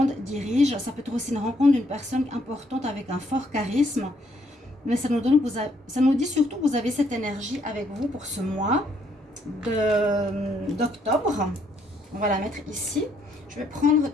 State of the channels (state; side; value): normal; both; correlation 0.70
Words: dirige. Ça peut être aussi une rencontre d'une personne importante avec un fort charisme. Mais ça nous dit surtout que vous avez cette énergie avec vous pour ce mois d'octobre. On va la mettre ici. Je vais prendre